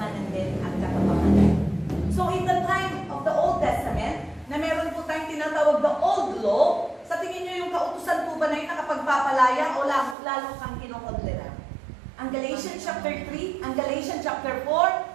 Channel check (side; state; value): left; drops out; at 10.2 s